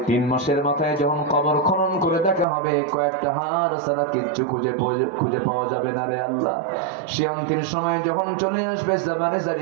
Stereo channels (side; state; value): left; drops out; at 2.5 s